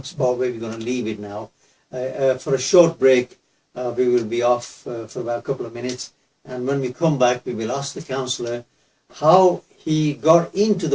spot where we're going to leave it now. For a short break, we will be off for about a couple of minutes. And when we come back, we will ask the councillor how he got into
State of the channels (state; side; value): identical; both; correlation 1.00